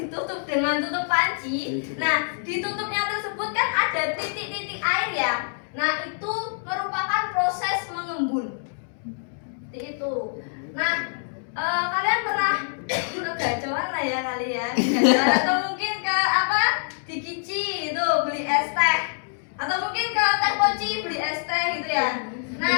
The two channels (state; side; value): silent; right; digital silence